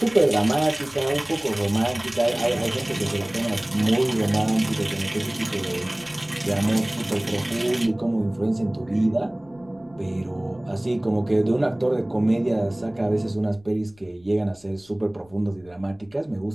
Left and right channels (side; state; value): left; noise; rumble, 28 dB below the sound